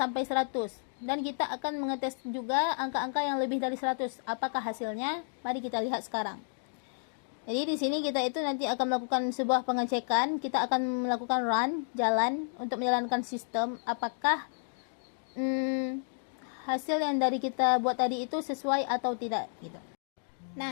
100. Dan kita akan mengetes juga angka-angka yang lebih dari 100. Apakah hasilnya? Mari kita lihat sekarang. Jadi di sini kita itu nanti akan melakukan sebuah pengecekan. Kita akan melakukan run, jalan untuk menjalankan sistem. Apakah hasil yang dari kita buat tadi itu sesuai atau tidak gitu.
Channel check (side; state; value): right; silent; digital silence